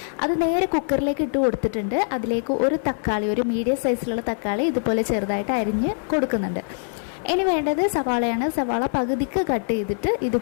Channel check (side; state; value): right; silent; digital silence